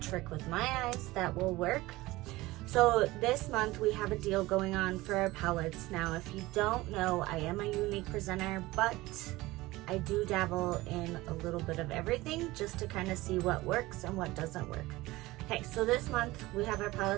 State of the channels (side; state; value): left; quieter; 19.4 dB